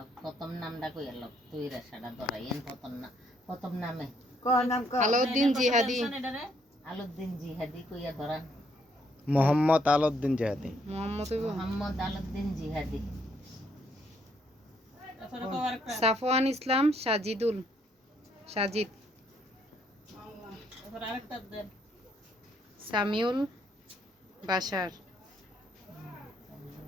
প্রথম নামটা কইল তুই রেশাটা ধরাইয়েন প্রথম নামে আলাউদ্দিন জিহাদি আলাউদ্দিন জিহাদি কইয়া ধরান মোহাম্মদ আলাউদ্দিন জিহাদি মোহাম্মদ আলাউদ্দিন জিহাদি সাফওয়ান ইসলাম সাজিদ সামিউল বাশার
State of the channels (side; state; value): both; normal; correlation 0.70